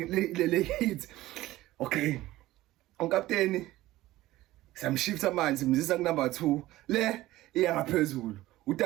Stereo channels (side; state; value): left; quieter; 16.6 dB